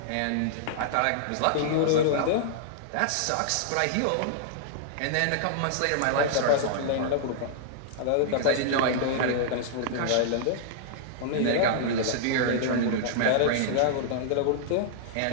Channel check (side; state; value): both; different; correlation -0.01